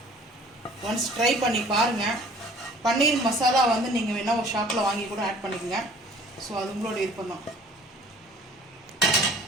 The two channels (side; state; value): both; normal; correlation 0.51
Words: once try பண்ணி பாருங்கள். பன்னீர் மசாலா வந்து நீங்கள் வேணால் ஒரு ஷாப்பில் வாங்கி கூட ஆட் பண்ணிக்கோங்க. ஸோ அது உங்களோட விருப்பம் தான்.